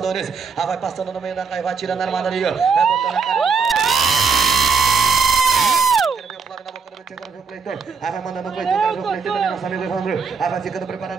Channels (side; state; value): left; quieter; 5.3 dB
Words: Vai passando no meio da caia, vai tirando a armada ali, ó. Vai botando a cara. Quero ver o Flávio na boca do Brete, quero ver o Cleiton. Vai mandando o Cleiton, quero ver o Cleiton também, nosso amigo Evandro. Vai ficando